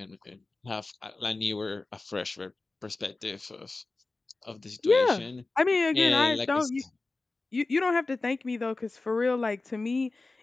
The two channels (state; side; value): quieter; right; 3.4 dB